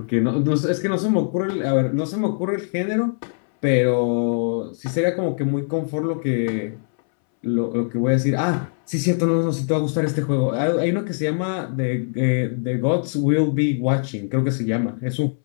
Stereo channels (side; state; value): right; silent; 64 dB below the other